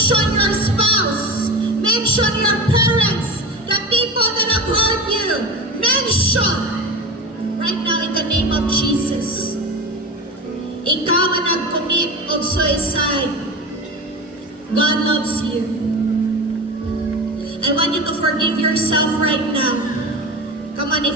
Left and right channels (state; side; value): normal; both; correlation 0.29